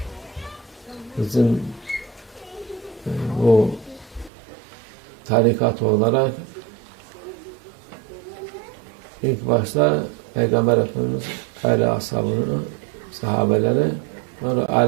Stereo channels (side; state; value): left; drops out; at 4.3 s